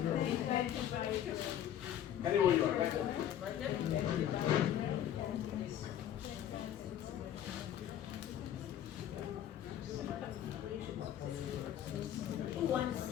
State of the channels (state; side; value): quieter; right; 10.7 dB